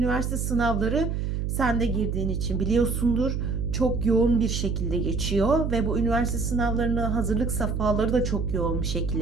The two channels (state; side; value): noise; right; hum, 1 dB below the sound